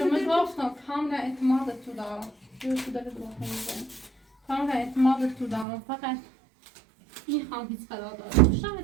خدمت گفتم کاملا اعتماد تو دارم تو داره دو کاملا اعتماد تو دارم فقط میخوام هیچ قرارداد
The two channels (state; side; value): drops out; left; at 5.7 s